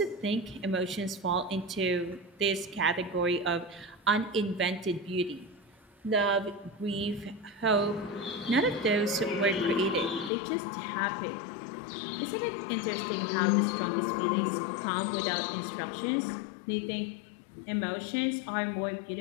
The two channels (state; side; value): drops out; right; at 10.3 s